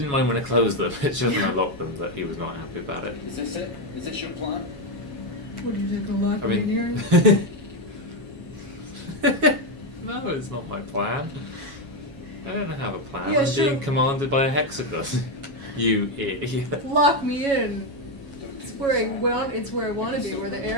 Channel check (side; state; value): left; late; 7.2 ms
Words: mind when I closed them, it's just when I locked them that he was not happy about it. Is this it? Is this your plan? Would you take a lock I mean... No, it's not my plan. I don't have a plan. Yeah, I'm sure. being commanded by a hexagon. You idiot. Lock me in. Don't do It's where I this, Sam. want. It's where I want to be, where the